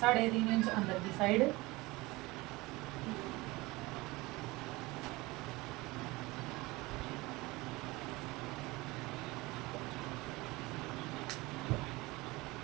इंच अंदर की साइड।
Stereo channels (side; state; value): left; quieter; 22.0 dB